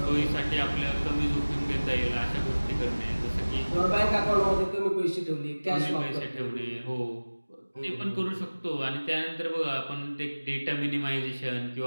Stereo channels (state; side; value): inverted; both; correlation -1.00